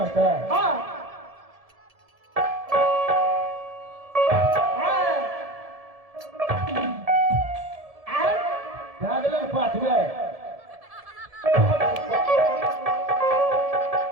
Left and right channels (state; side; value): late; left; 1.7 ms